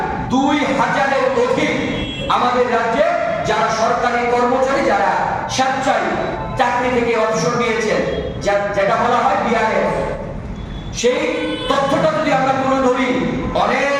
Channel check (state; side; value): identical; both; correlation 1.00